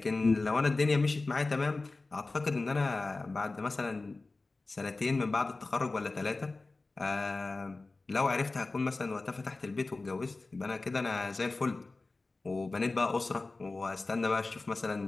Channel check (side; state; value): right; quieter; 3.4 dB